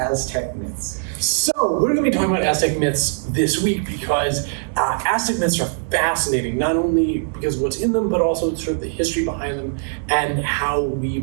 myths. So, we're going to be talking about Aztec myths this week because Aztec myths are fascinating, not only because of what's in them, but also sort of the history behind them and how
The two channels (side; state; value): left; silent; digital silence